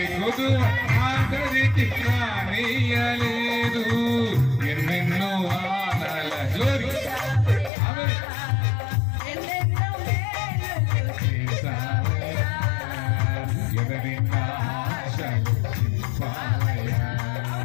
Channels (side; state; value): right; drops out; at 7.7 s